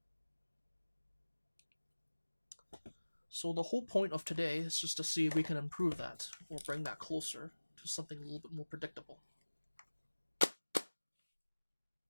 So the whole point of today is just to see if we can improve that, or bring that closer to something a little bit more predictable.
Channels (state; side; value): inverted; both; correlation -1.00